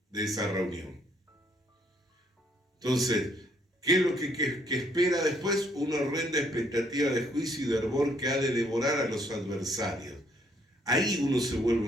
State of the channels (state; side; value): normal; both; correlation 0.68